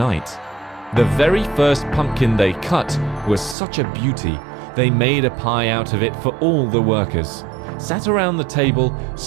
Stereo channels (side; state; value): left; drops out; at 3.6 s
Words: The very first pumpkin they cut was such a beauty, they made a pie out of it for all the workers. Sat around the table,